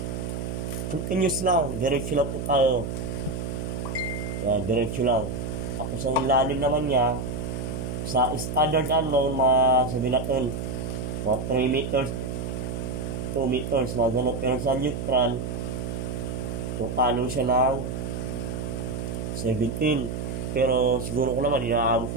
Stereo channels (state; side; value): noise; right; hum, 4 dB below the sound